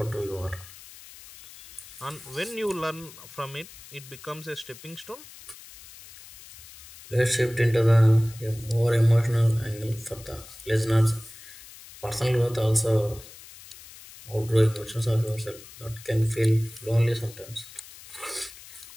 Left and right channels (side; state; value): left; noise; hiss, 18 dB below the sound